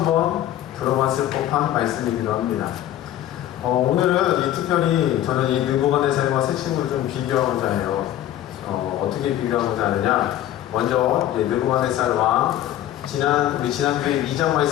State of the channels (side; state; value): right; quieter; 12.5 dB